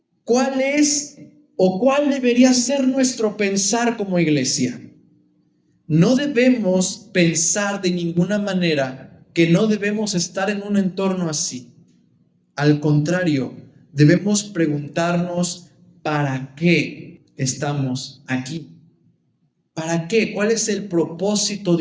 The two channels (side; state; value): both; identical; correlation 1.00